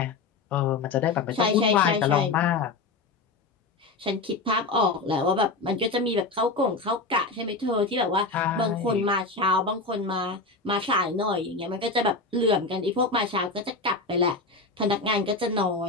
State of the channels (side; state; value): right; quieter; 3.7 dB